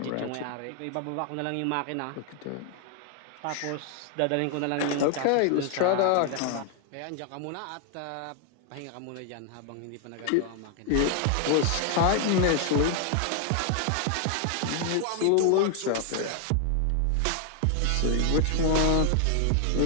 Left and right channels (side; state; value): both; different; correlation 0.00